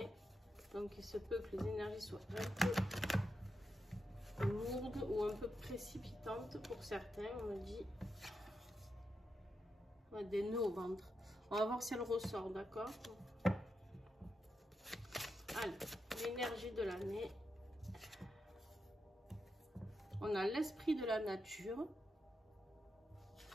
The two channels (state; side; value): normal; both; correlation 0.86